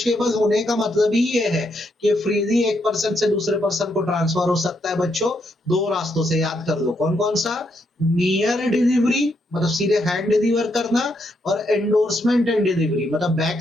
होने का मतलब ही ये है कि फ्रीली एक पर्सन से दूसरे पर्सन को ट्रांसफर हो सकता है। बच्चों दो रास्तों से, याद कर लो कौन कौन सा, नियर डिलीवरी मतलब सीधे हैंड डिलीवर करना, और एंडोर्समेंट एंड डिलीवरी मतलब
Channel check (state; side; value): normal; both; correlation 0.77